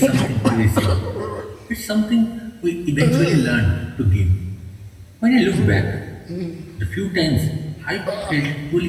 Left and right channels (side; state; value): both; identical; correlation 1.00